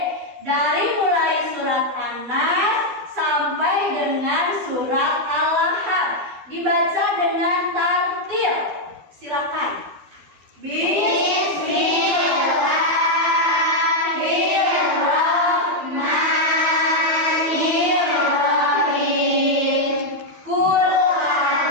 dari mulai surat An-Nas sampai dengan surat Al-Lahab. Dibaca dengan tartil. Silakan. Bismillahirrahmanirrahim. Qul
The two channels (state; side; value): late; left; 12 ms